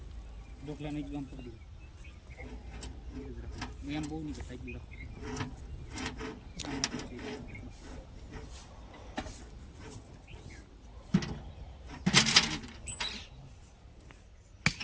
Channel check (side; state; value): both; identical; correlation 1.00